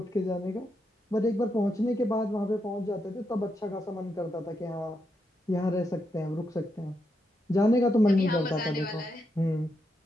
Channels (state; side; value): normal; both; correlation 0.82